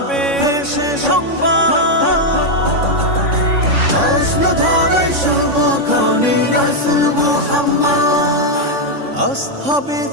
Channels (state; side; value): late; left; 3.6 ms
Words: পেশে সংবাদ। আসলো ধরে শুভক্ষণে রাসূল মুহাম্মদ। আসহাবে